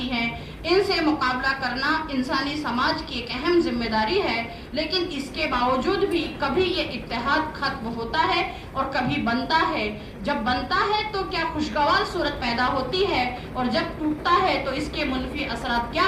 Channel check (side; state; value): both; identical; correlation 1.00